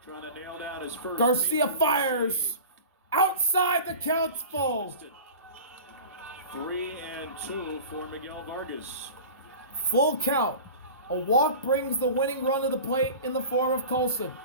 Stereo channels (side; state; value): both; inverted; correlation -0.36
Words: Trying to nail down his first. Garcia fires. Outside, the count's full. 3-2 for Miguel Vargas. Full count. A walk brings the winning run to the plate in the form of Colson.